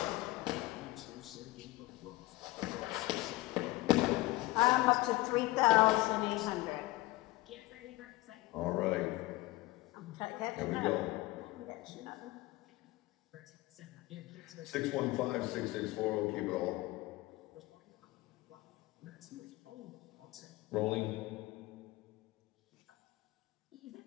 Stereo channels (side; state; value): right; quieter; 19.6 dB